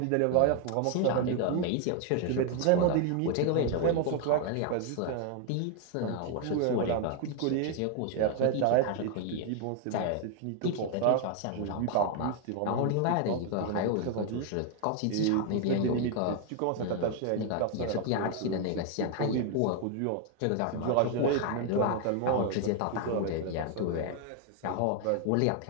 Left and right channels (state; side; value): different; both; correlation 0.01